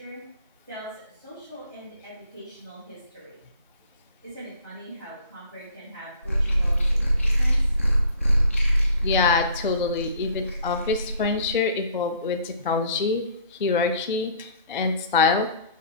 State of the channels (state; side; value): inverted; both; correlation -0.52